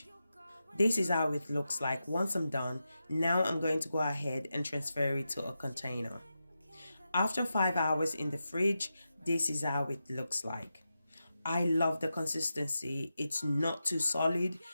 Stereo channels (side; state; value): both; inverted; correlation -0.90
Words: This is how it looks like once I'm done. Now I'm going to go ahead and transfer it to a container. After 5 hours in the fridge, this is how it looks like. I love the consistency. It's not too solid